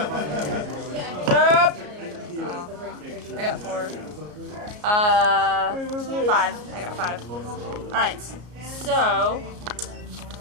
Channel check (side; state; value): left; late; 33 ms